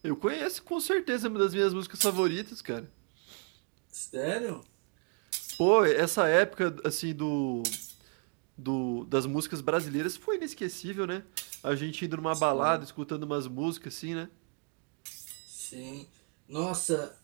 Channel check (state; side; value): quieter; left; 37.4 dB